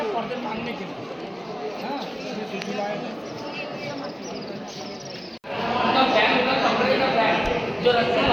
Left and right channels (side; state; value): both; identical; correlation 1.00